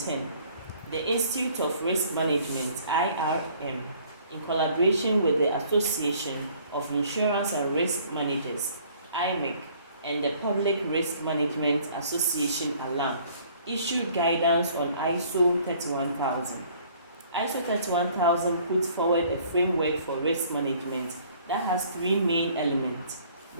the Institute of Risk Management, IRM, in collaboration with the Association of Insurance and Risk Managers, IMIC, and the Public Risk Management Association, ALAM, issued guidance on ISO 31000. ISO 31000 puts forward a framework for risk management that has 3 main elements.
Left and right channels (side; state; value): both; inverted; correlation -0.57